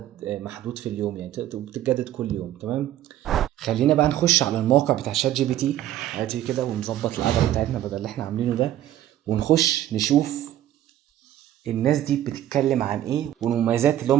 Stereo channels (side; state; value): left; quieter; 12.6 dB